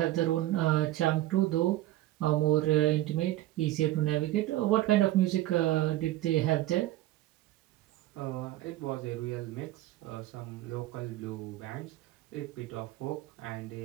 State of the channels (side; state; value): left; quieter; 15.4 dB